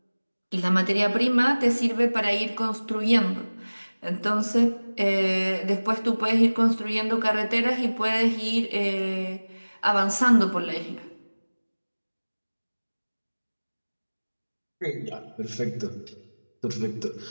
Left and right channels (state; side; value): inverted; both; correlation -1.00